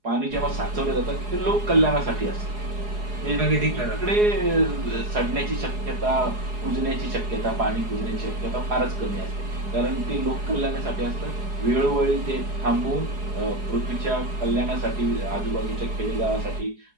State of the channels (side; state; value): left; late; 4.8 ms